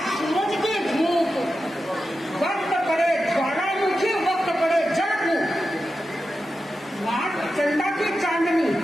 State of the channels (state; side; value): normal; both; correlation 0.91